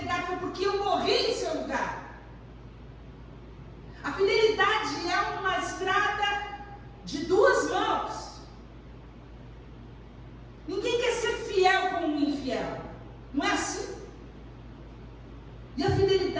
foi porque eu morri em seu lugar. A fidelidade é uma estrada de duas mãos. Ninguém quer ser fiel com um infiel. Não é assim? E a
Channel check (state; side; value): identical; both; correlation 1.00